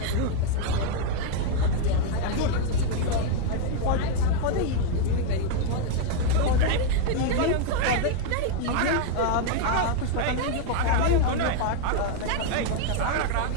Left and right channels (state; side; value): different; both; correlation 0.01